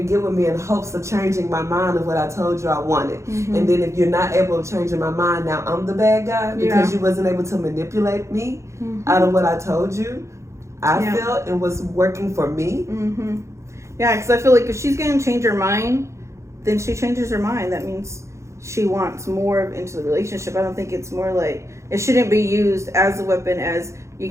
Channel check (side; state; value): left; late; 0.14 ms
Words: get with me in hopes of changing my mind of what I told you I wanted. And then if you're not able to change my mind, now I'm the bad guy because you wasn't able to manipulate me out of what I told you. I felt and was working for me. Yeah, because I feel like if she's going to change her mind, then she changes her mind. That means she wants more into the relationship. I don't think it's more like, it shouldn't be used as a weapon as you